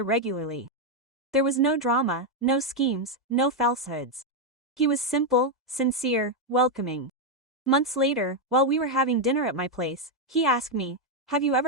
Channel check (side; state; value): both; normal; correlation 0.02